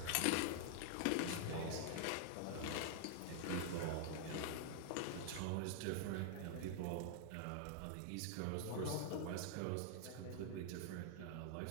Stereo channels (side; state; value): both; different; correlation 0.00